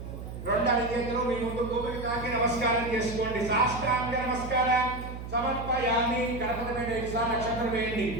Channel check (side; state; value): right; noise; hum, 9 dB below the sound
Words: అడిగేందులో మీ ముందు గోపిక తాకి నమస్కారం చేసుకోండి. శాస్త్రాంగ నమస్కారం సమర్పయామి. గణపతి మీద నక్షత్రం వేయండి.